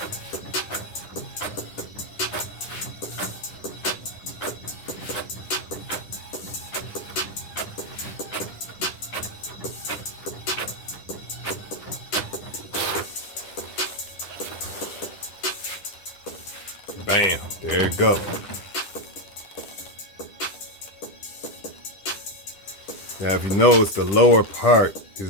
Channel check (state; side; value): late; right; 10 ms